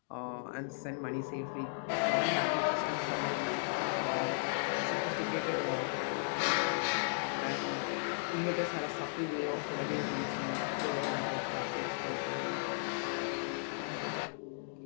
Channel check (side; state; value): right; silent; digital silence